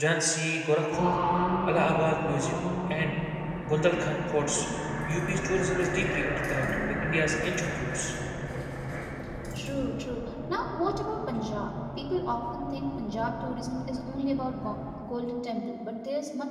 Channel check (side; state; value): both; identical; correlation 1.00